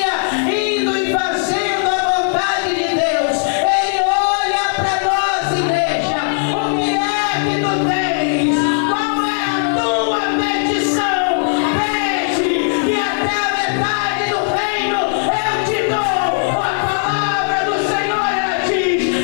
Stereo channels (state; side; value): silent; right; 65 dB below the other